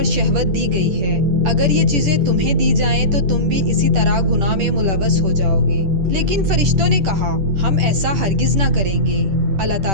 شہوت دی گئی ہے، اگر یہ چیزیں تمہیں دی جائیں تو تم بھی اسی طرح گناہ میں ملوث ہو جاؤ گے۔ لیکن فرشتوں نے کہا ہم ایسا ہرگز نہ کریں گے۔ اللہ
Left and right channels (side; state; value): left; late; 10 ms